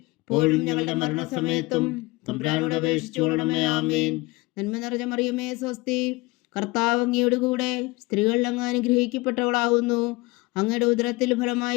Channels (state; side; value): quieter; right; 22.9 dB